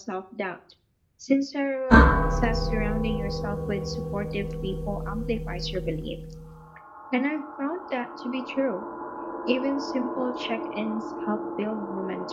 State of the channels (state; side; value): identical; both; correlation 1.00